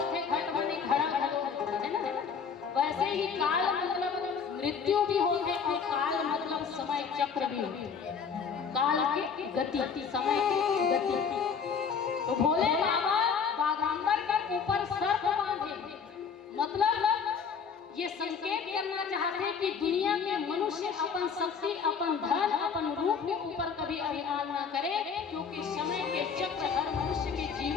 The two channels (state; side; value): quieter; right; 6.2 dB